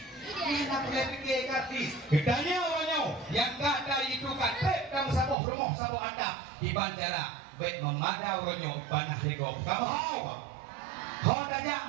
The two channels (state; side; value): drops out; left; at 5.4 s